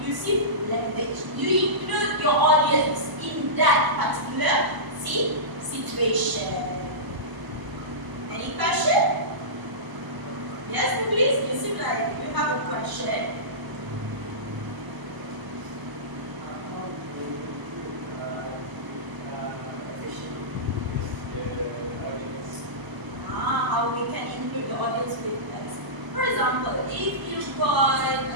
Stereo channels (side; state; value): left; late; 1.0 ms